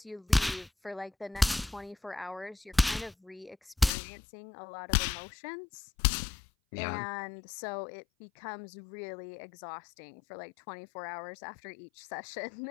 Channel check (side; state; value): right; drops out; at 3.9 s